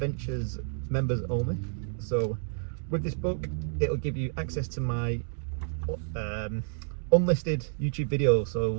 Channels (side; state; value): left; silent; digital silence